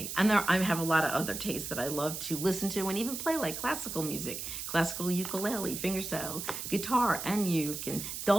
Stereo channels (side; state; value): right; noise; hiss, 6 dB below the sound